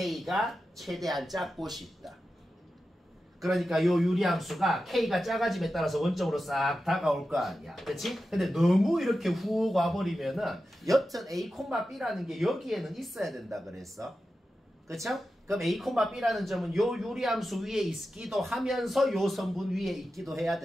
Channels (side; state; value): both; normal; correlation 0.92